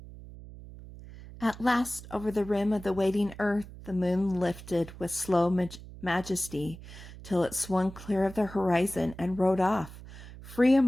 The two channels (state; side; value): noise; right; hum, 15 dB below the sound